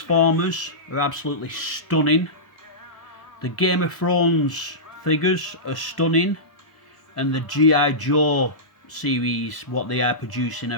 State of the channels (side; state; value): right; late; 1.1 ms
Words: are absolutely stunning. The Game of Thrones figures are stunning, and the G.I. Joe series, what they are producing,